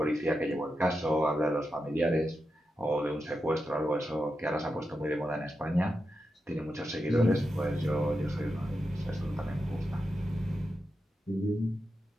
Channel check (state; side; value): normal; both; correlation 0.88